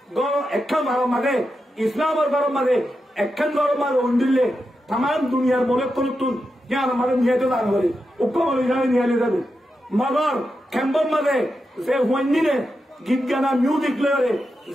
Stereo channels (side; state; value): both; normal; correlation 0.88